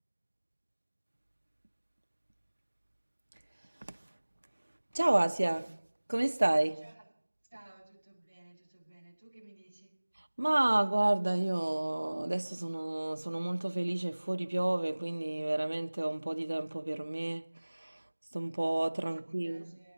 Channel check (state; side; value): inverted; both; correlation -1.00